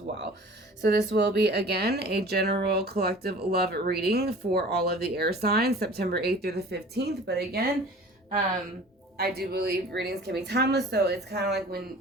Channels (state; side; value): normal; both; correlation 0.44